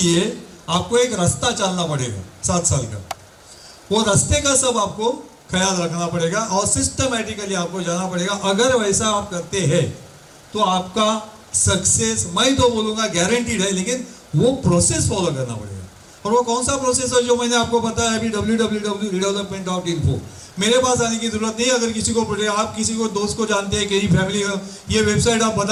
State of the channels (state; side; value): identical; both; correlation 1.00